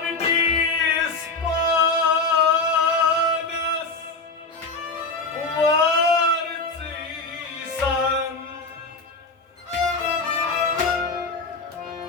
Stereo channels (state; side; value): quieter; right; 3.6 dB